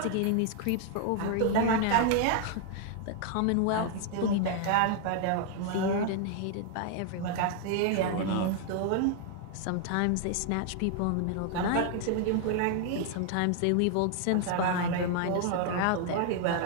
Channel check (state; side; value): different; both; correlation 0.00